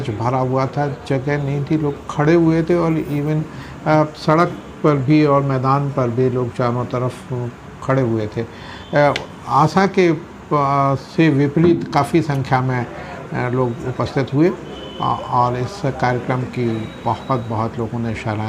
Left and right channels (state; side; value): identical; both; correlation 1.00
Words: भरा हुआ था। जगह नहीं थी, लोग खड़े हुए थे और इवन सड़क पर भी और मैदान पर भी लोग चारों तरफ खड़े हुए थे। आशा के से विपरीत काफ़ी संख्या में लोग उपस्थित हुए और इस कार्यक्रम की बहुत लोगों ने